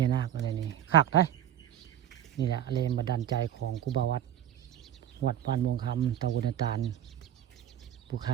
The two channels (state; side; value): quieter; left; 10.5 dB